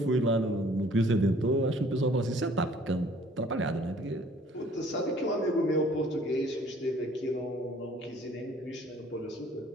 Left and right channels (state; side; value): normal; both; correlation 0.56